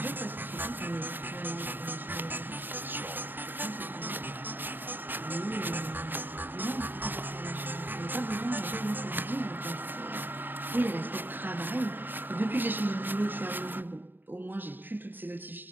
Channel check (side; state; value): left; late; 0.093 ms